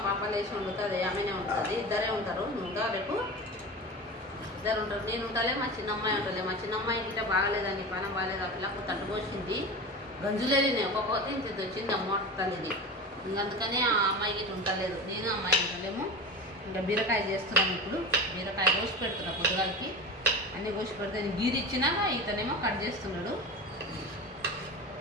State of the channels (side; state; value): both; normal; correlation 0.29